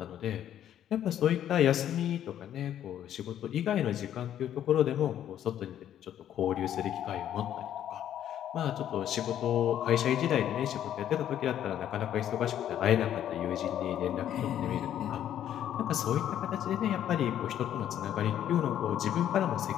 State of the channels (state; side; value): quieter; right; 10.7 dB